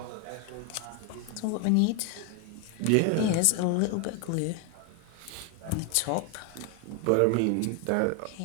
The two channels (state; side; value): different; both; correlation 0.01